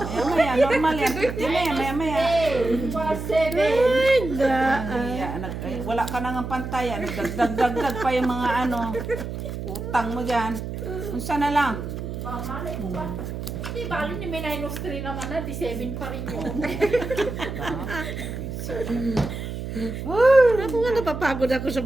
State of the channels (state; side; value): noise; right; hum, 6 dB below the sound